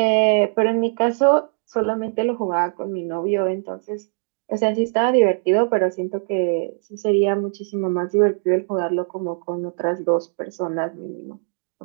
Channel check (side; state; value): left; silent; digital silence